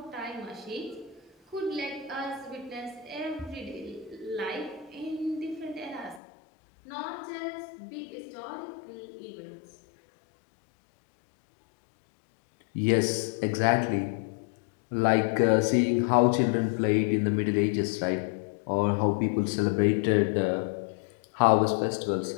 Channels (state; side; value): drops out; right; at 6.2 s